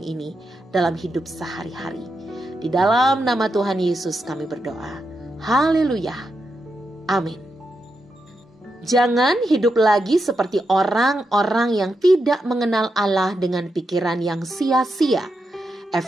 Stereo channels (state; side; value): normal; both; correlation 0.85